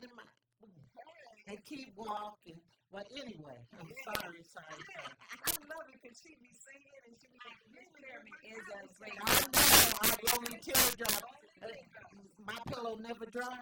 in mine. Hey. And keep walking. But anyway, sorry. I love it because she be singing and she be getting is a great. I know. Lonely teardrop. Only teardrops. My pillow never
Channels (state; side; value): identical; both; correlation 1.00